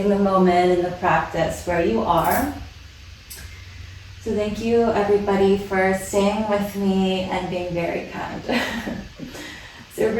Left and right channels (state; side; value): identical; both; correlation 1.00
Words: the moment and the practice where you are. So thank you everybody for staying with me and being very kind. So